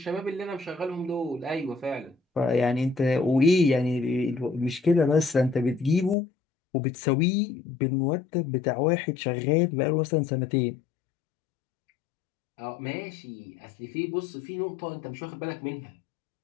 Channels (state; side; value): drops out; right; at 6.2 s